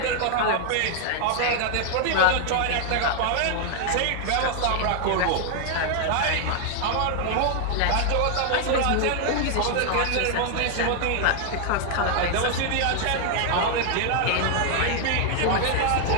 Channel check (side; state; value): both; different; correlation 0.00